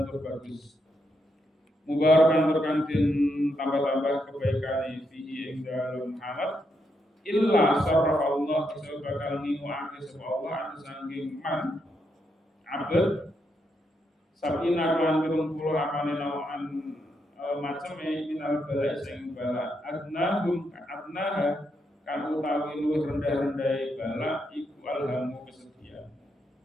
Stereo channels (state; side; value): normal; both; correlation 0.80